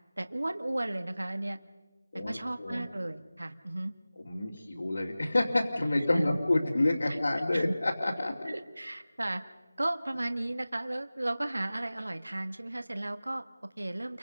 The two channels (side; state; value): both; inverted; correlation -0.97